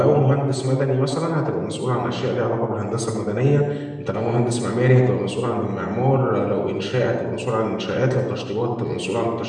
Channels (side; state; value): both; identical; correlation 1.00